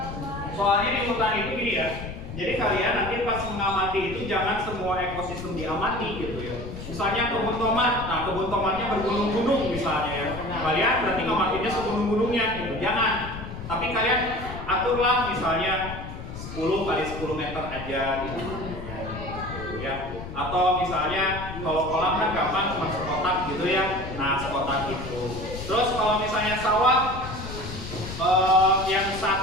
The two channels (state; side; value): noise; left; rumble, 9 dB below the sound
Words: Soalnya di hutan itu gini ya. Jadi kalian nanti pas mengamati itu jangan semua ekosistem diamati gitu ya. Misalnya kebun tomat, nah kebun tomatnya bergunung-gunung misalnya ya. Kalian berarti ngamatinya segunung-gunungnya gitu. Jangan. Tapi kalian aturlah misalnya 10 kali 10 meter aja gitu. Ya. Atau misalnya kalau kolam kan gampang cuma sekotak gitu ya. Nah, sekotak itu. Terus kalau misalnya sawah yang